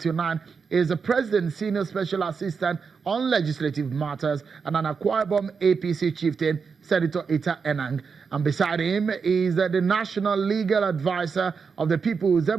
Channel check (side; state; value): left; quieter; 5.6 dB